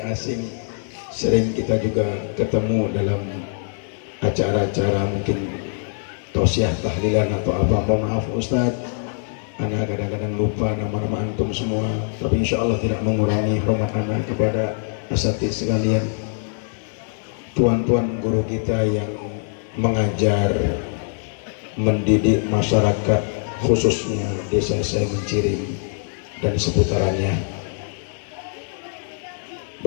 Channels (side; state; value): right; silent; 58 dB below the other